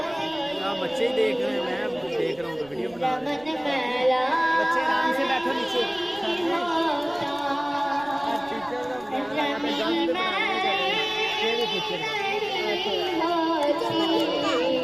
आप बच्चे ही देख रहे हैं, मैं देख रहा हूँ तो वीडियो बना रहे हैं। बच्चे आराम से बैठो नीचे।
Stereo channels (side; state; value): right; noise; rumble, 25 dB below the sound